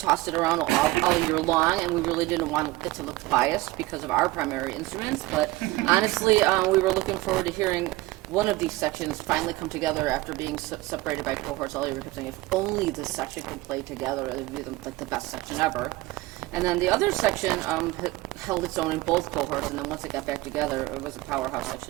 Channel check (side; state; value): left; quieter; 19.7 dB